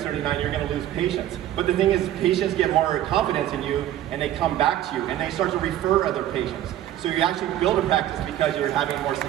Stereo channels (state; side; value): quieter; left; 12.5 dB